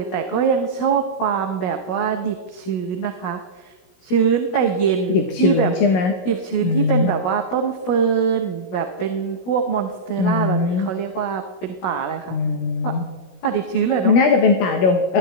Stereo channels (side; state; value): right; late; 16 ms